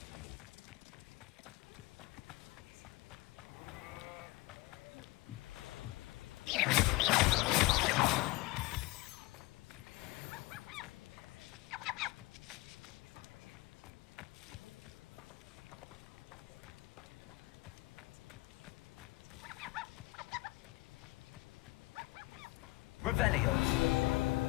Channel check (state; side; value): quieter; right; 21.6 dB